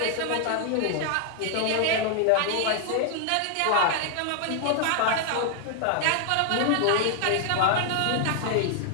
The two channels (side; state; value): both; different; correlation 0.00